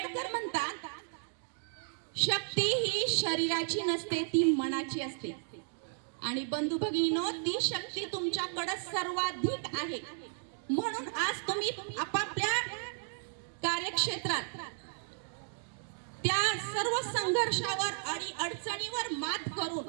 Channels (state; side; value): silent; left; digital silence